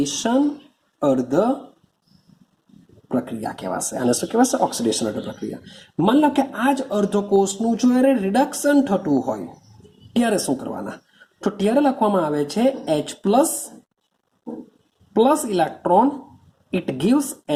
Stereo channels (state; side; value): identical; both; correlation 1.00